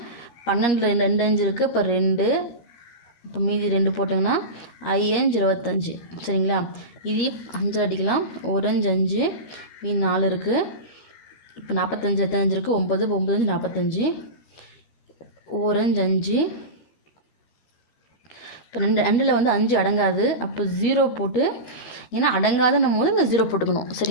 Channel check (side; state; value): right; late; 13 ms